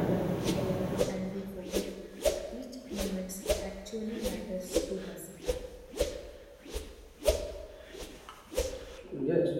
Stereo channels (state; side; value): identical; both; correlation 1.00